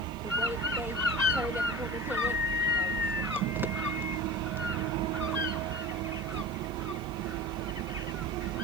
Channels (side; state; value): left; noise; hiss, 25 dB below the sound